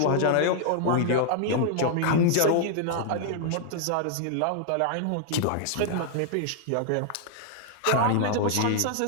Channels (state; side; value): different; both; correlation 0.00